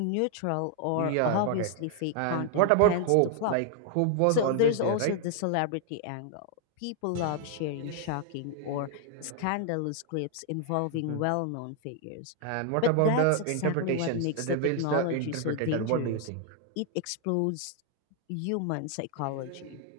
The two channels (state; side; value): different; both; correlation 0.00